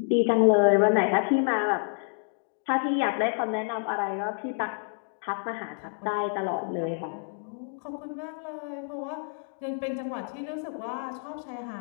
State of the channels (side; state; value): right; silent; digital silence